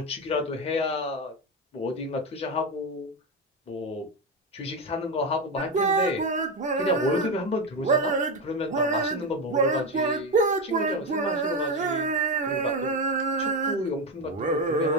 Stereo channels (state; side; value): normal; both; correlation 0.12